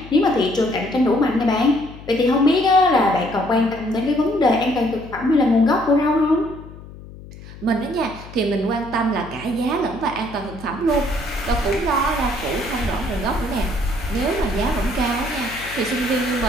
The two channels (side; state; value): left; noise; hum, 16 dB below the sound